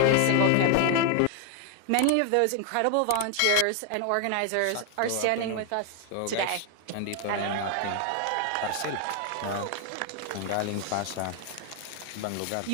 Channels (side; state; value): both; different; correlation 0.01